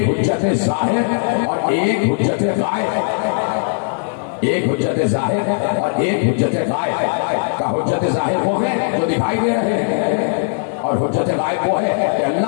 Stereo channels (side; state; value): right; silent; digital silence